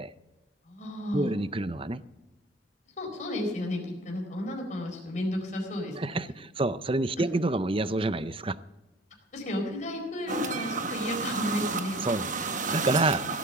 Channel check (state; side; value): normal; both; correlation 0.47